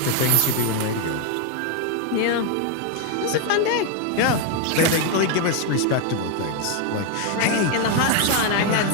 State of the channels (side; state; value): both; different; correlation 0.01